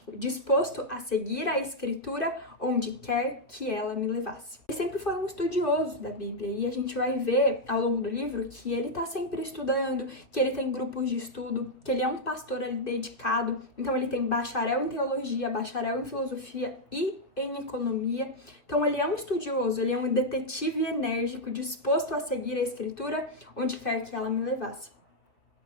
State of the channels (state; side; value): late; right; 2.4 ms